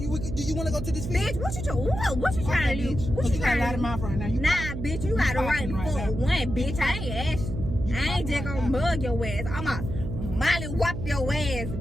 Do you want to go to this field? Bitch, what you trying to do? bitch. What Cause you you got a trying lot to of do? mouth right now. You Nah, bitch, you got the right talking to right fuck now. one, bitch. I ain't asking. I ain't talking just right gonna now. mug your ass. I'ma molly whop your ass,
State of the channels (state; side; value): noise; right; hum, 6 dB below the sound